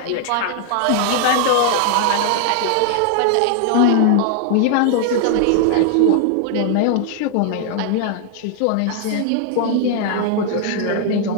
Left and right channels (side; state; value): both; different; correlation 0.00